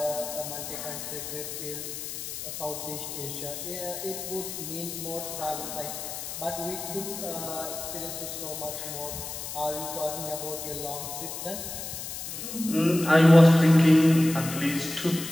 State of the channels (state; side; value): noise; left; hiss, 8 dB below the sound